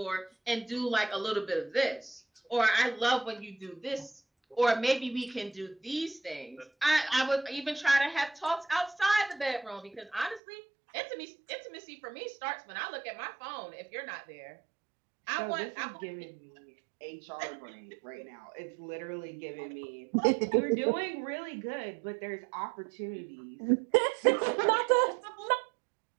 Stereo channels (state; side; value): drops out; left; at 10.4 s